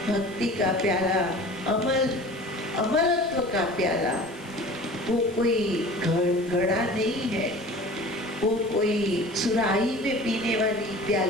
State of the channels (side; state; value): left; noise; hiss, 24 dB below the sound